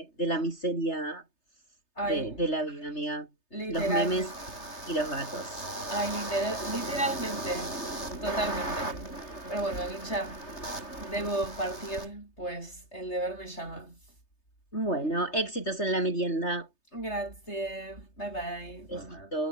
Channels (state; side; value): late; right; 3.3 ms